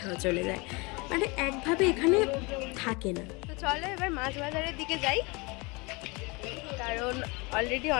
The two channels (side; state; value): right; quieter; 27.1 dB